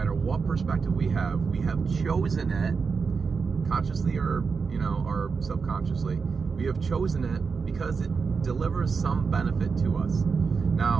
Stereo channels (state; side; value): quieter; left; 5.3 dB